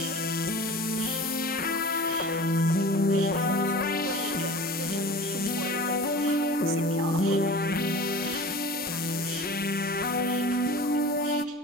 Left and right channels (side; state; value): both; normal; correlation 0.38